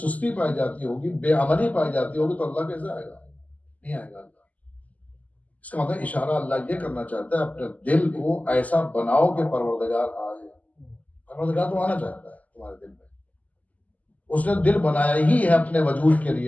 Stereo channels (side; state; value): right; late; 0.075 ms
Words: پائی جاتی ہوگی، بے عملی پائی جاتی ہوگی تو اللہ کیسے آئے گا؟ نہیں آئے گا اللہ۔ اس کا مطلب اشارہ اللہ یہ کرنا چاہتا ہے اپنے دل کو ایسا بناؤ کہ پروردگار آئے۔ پروردگار تو آنا چاہتا ہے تمہارے دل میں، اس نے دل بنایا ہی ہے اپنے وجود کے